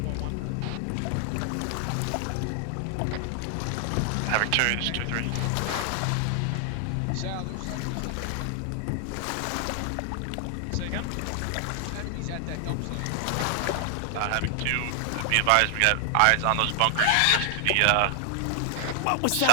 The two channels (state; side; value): different; both; correlation 0.00